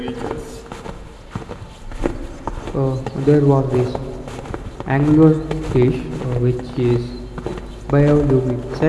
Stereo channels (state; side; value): identical; both; correlation 1.00